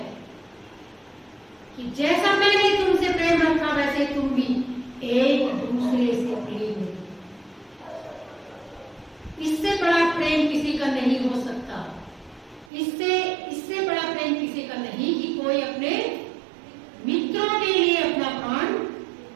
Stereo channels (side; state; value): left; drops out; at 12.7 s